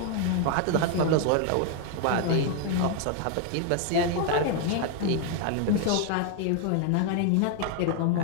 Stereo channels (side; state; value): both; different; correlation 0.00